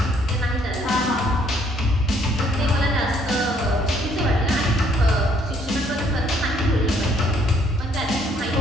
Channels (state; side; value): normal; both; correlation 0.65